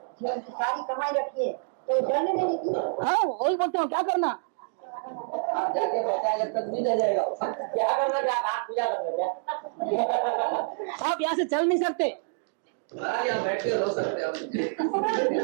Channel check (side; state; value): left; silent; digital silence